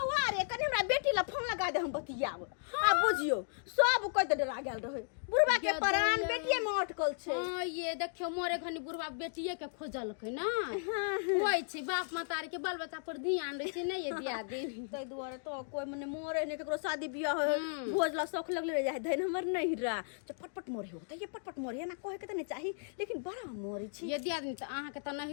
रे कनी हमरा बेटी ला फोन लगा दे हम बतियाब आ बुझियो सब कोइ त डरा गेल रहे बुढ़वा के प्राण बेटिए में अटकल छै। हां ये देखियो मोरे घनी बुढ़वा बेटिए के खोजलकै ना होय छै बाप मातारी के बाल बच्चा पर ध्यान दै छै नहीं ये दिया दे तै दुआरे तो कोई मने मोरे ने केकरो शादी बियाह हो भोज ला शौक लगले रह जाय धैन हमर नहीं रा पटपट मोरे हो त ये पटपट मोरे ना कहे के त नहीं चाही लेकिन बड़ा मोरे छी ये दिया दिन त अहाँ के त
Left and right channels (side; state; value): right; silent; digital silence